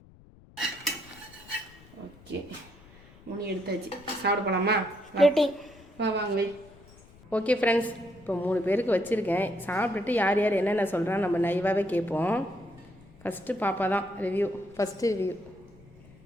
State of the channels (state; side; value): noise; left; rumble, 24 dB below the sound